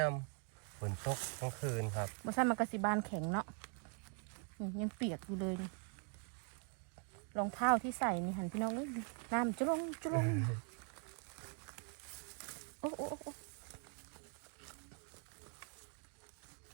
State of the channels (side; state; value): left; quieter; 39.6 dB